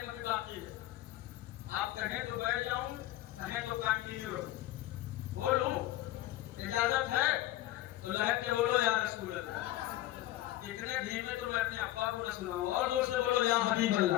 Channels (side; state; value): right; quieter; 15.3 dB